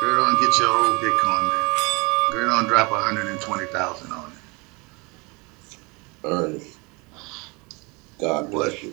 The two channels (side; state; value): left; quieter; 28.2 dB